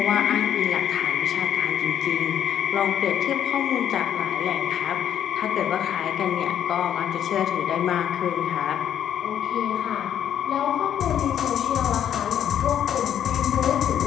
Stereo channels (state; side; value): quieter; right; 9.8 dB